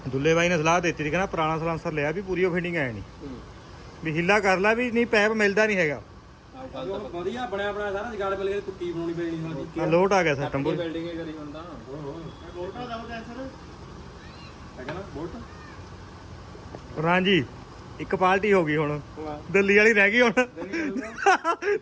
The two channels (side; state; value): both; identical; correlation 1.00